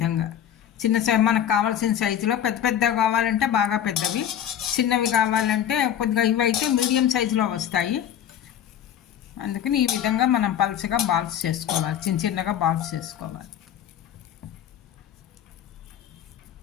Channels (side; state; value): right; quieter; 10.0 dB